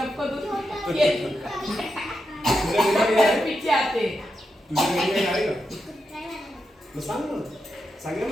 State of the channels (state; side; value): normal; both; correlation 0.86